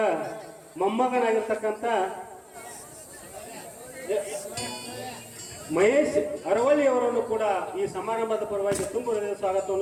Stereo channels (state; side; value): identical; both; correlation 1.00